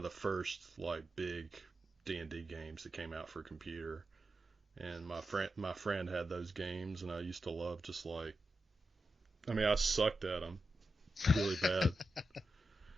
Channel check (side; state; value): both; normal; correlation 0.89